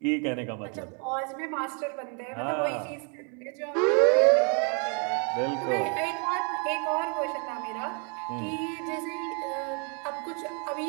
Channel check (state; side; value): quieter; left; 37.9 dB